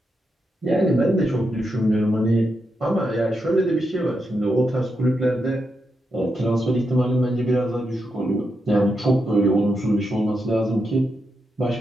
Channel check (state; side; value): normal; both; correlation 0.84